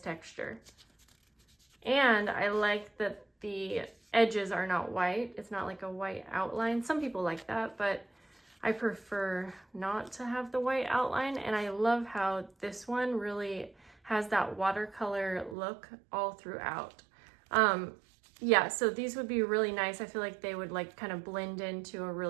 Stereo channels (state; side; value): drops out; left; at 15.6 s